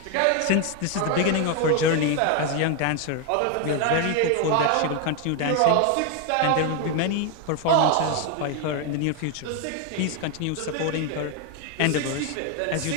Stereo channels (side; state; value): both; different; correlation 0.01